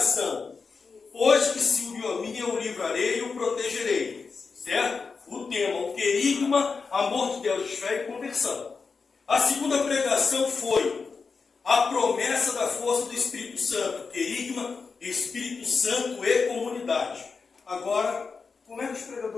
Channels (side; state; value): right; quieter; 4.9 dB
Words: Pois que se uniu a mim, eu o livrarei e o protegerei. Certo? O tema, o querigma, amor de Deus, fé e conversão. A segunda pregação foi a promessa da força do Espírito Santo. Querigma, Espírito Santo e comunidade. Agora, como é que os